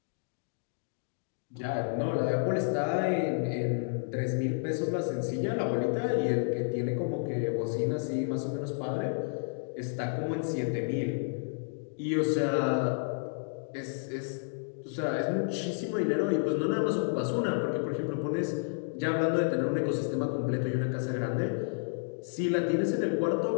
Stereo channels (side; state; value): right; silent; digital silence